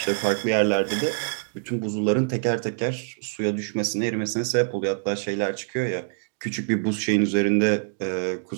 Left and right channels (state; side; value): silent; left; digital silence